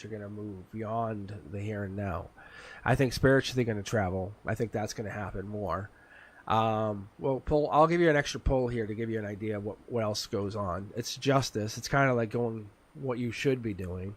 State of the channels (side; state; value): both; identical; correlation 1.00